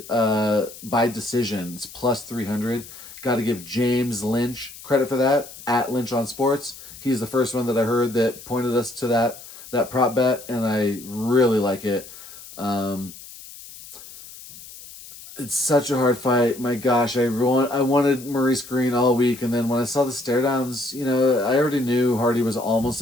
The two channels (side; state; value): left; noise; hiss, 16 dB below the sound